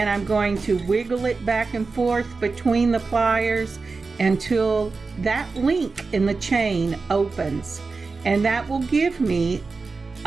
I'm going to wiggle it back and forth between the pliers until that link in the chain opens, and that will give me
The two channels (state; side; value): quieter; left; 4.2 dB